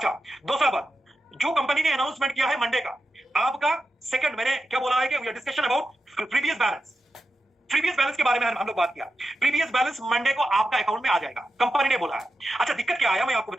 दूसरा बात, जो कंपनी ने अनाउंसमेंट किया है मंडे का, आपका सेकंड, मैंने क्या बोला है कि discussion about previous balance. Previous balance के बारे में हम लोग बात किया। प्रीवियस बैलेंस मंडे को आपका अकाउंट में आ जाएगा, कंपनी ने बोला है। अच्छा, दिक्कत क्या आया मैं आपको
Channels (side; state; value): both; normal; correlation 0.90